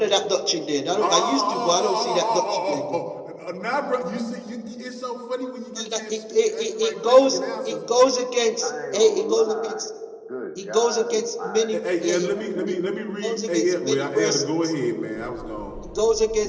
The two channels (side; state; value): both; identical; correlation 1.00